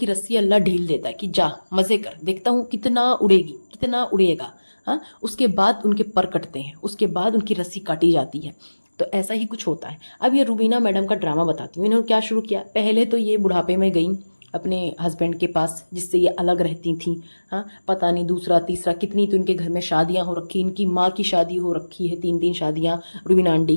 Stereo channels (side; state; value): both; inverted; correlation -1.00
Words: रस्सी अल्लाह ढील देता है कि जा मजे कर, देखता हूँ कितना उड़ेगी, कितना उड़ेगा। हाँ, उसके बाद उनके पर कटते हैं, उसके बाद उनकी रस्सी काटी जाती है। तो ऐसा ही कुछ होता है। अब ये रुबीना मैडम का ड्रामा बताती हूँ। इन्होंने क्या शुरू किया, पहले तो ये बुढ़ापे में गई अपने हस्बैंड के पास जिससे ये अलग रहती थी। हाँ, पता नहीं दूसरा तीसरा कितनी तो इनके घर में शादियां हो रखी, इनकी माँ की शादी हो रखी है, 3 शादियां रुबीना आंटी